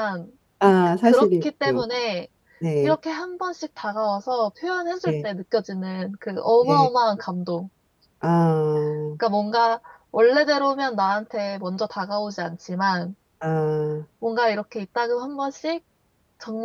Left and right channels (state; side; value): identical; both; correlation 1.00